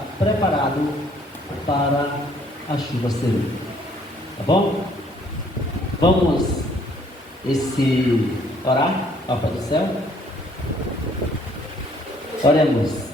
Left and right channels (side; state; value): both; normal; correlation 0.62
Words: preparados para a chuva serena. Tá bom? Vamos orar ao Pai do céu. Oremos.